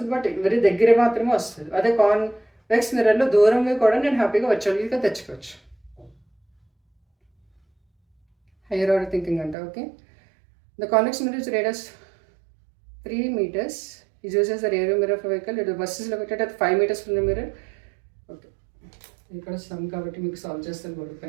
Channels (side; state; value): left; drops out; at 9.6 s